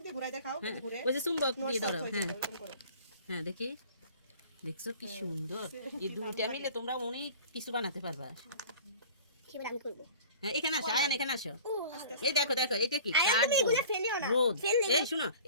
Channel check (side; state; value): both; inverted; correlation -0.43